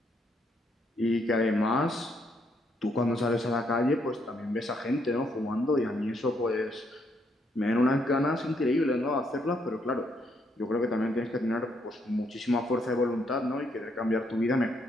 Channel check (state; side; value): normal; both; correlation 0.74